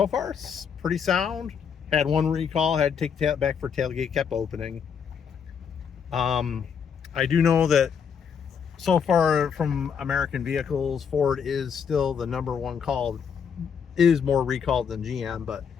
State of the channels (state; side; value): quieter; right; 7.0 dB